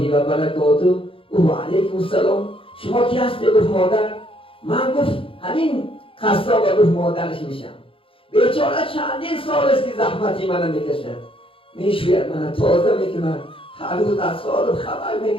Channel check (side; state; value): right; late; 0.26 ms